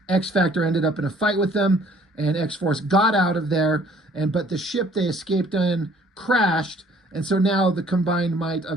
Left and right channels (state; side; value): normal; both; correlation 0.58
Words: X-Factor ended up in a fight with them, and X-Force got out of there, but the ship they escaped in crashed, and so now the combined might